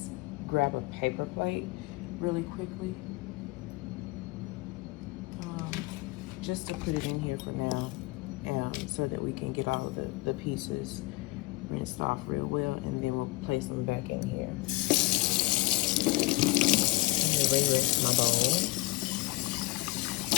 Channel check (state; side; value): quieter; right; 21.3 dB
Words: grab a paper plate really quickly, just to put it in here for now, so that we can get all of the pieces rinsed off real well, and then we'll place them back in here. I'm gonna re-rinse my bowl.